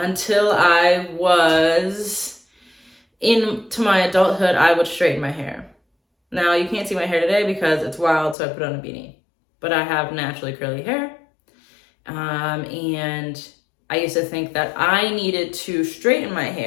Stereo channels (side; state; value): right; drops out; at 8.3 s